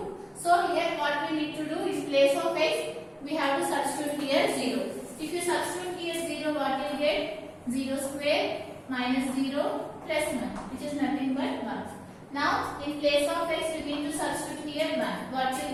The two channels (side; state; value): both; identical; correlation 1.00